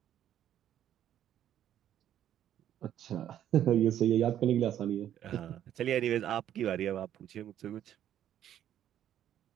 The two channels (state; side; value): quieter; left; 10.9 dB